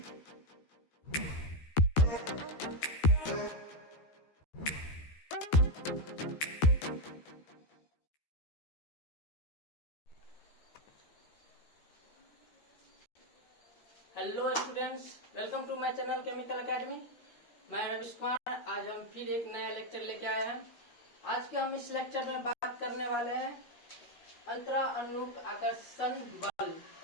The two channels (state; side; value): late; right; 13 ms